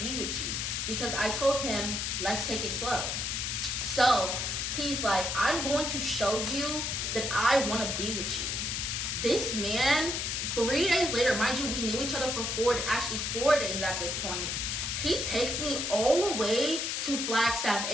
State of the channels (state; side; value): noise; left; hiss, 1 dB below the sound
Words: with you. Because I told him, let's take it slow. So he's like, I'm going to show you that I want to be with you. This man, 3 days later, mind you, we knew each other for 4 days at this point. He takes me all the way to Flagstaff,